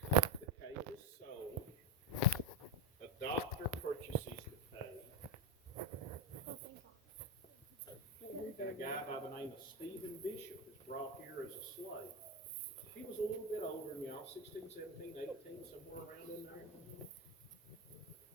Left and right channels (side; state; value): both; normal; correlation 0.08